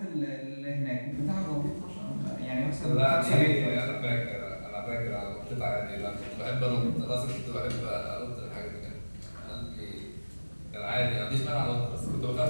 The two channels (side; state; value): both; inverted; correlation -1.00